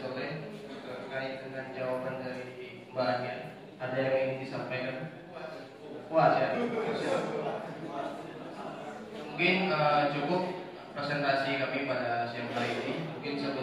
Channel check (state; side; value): identical; both; correlation 1.00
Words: terkait dengan jawaban dari Mbak Ania? Ada yang ingin disampaikan? Puas ya? Mungkin cukup presentasi kami pada siang hari ini. Mungkin